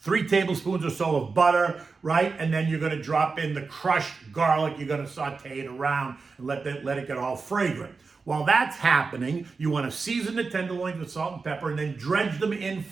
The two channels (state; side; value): quieter; left; 4.5 dB